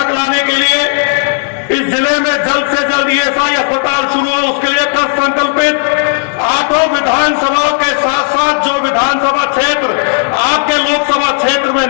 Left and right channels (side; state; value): right; silent; digital silence